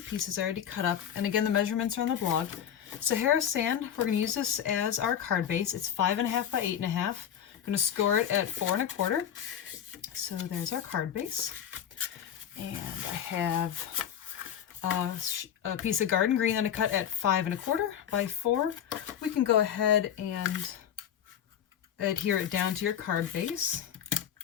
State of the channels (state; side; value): quieter; right; 9.4 dB